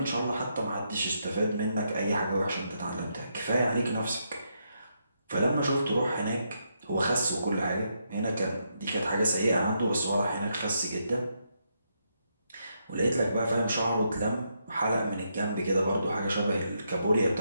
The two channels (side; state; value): both; inverted; correlation -0.79